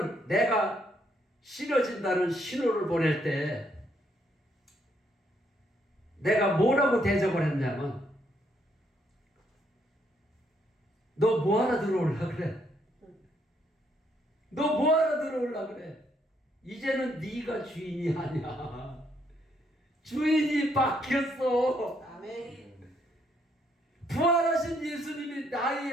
내가 싫어진다는 신호를 보낼 때 내가 뭐라고 대접을 했냐면, 너 뭐하러 들어올라 그래? 너 뭐하러 들어올라 그래? 이제는 네가 주인이 아니야. 주인이 바뀌었어. 아멘. 부활하신 예수님이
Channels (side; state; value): both; normal; correlation 0.72